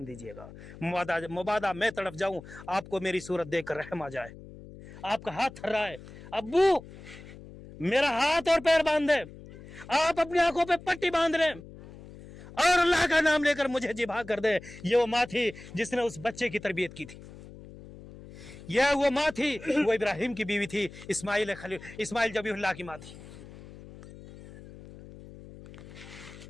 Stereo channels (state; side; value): noise; left; hum, 17 dB below the sound